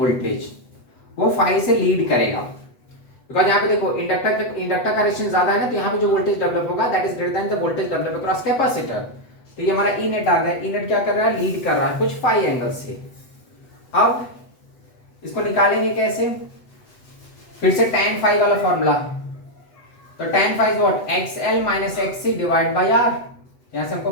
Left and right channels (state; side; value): late; right; 8.0 ms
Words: वो 5 से लीड करेगा। बिकॉज यहाँ पे देखो इंडक्टर का रेजिस्टेंस ज्यादा है ना, तो यहाँ पे जो वोल्टेज डेवलप होगा that is greater than the voltage develop across capacitor. तो ये हमारा ई नेट आ गया, ई नेट क्या कर रहा है, लीड कर रहा है कुछ 5 एंगल से। अब इसको निकालेंगे कैसे, फिर से tan phi वाला फॉर्मूला। तो tan phi is what, XL minus XC divide by R। यहां से हमको